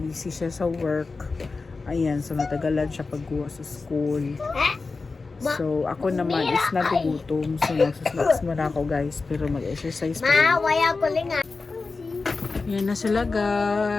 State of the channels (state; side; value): quieter; right; 4.0 dB